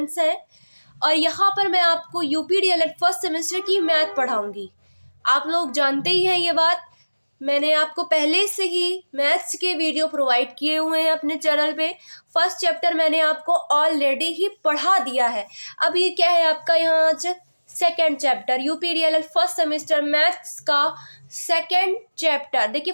हैं और यहाँ पर मैं आपको यूपीडीएलएड फर्स्ट सेमेस्टर की मैथ पढ़ाऊंगी। आप लोग जानते ही हैं ये बात, मैंने आपको पहले से ही मैथ्स के वीडियो प्रोवाइड किए हुए हैं अपने चैनल पे। फर्स्ट चैप्टर मैंने आपको ऑलरेडी ही पढ़ा दिया है। अब ये क्या है आपका यहाँ आज second chapter, UP DElEd first semester maths का सेकेंड चैप्टर। देखिए,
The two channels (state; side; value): inverted; both; correlation -1.00